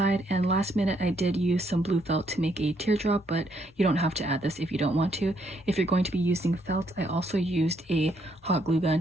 and last minute I did use some blue felt to make a teardrop, but you don't have to add this if you don't want to. If you're going to be using felt, I also used a hot glue gun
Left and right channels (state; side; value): normal; both; correlation 0.73